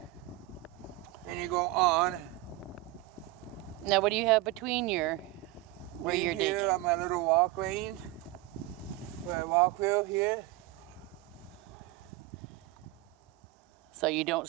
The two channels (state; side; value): quieter; left; 17.5 dB